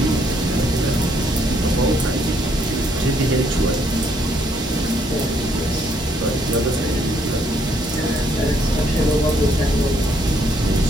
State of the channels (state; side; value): normal; both; correlation 0.70